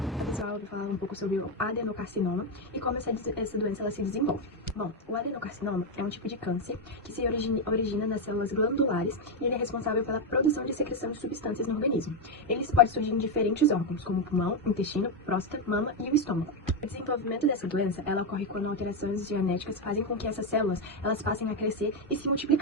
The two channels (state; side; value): normal; both; correlation 0.05